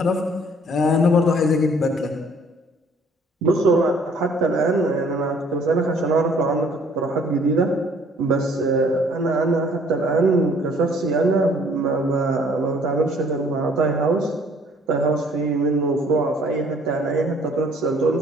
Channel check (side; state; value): both; normal; correlation 0.58